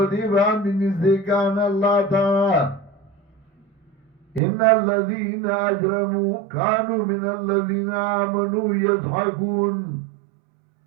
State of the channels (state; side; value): drops out; left; at 4.4 s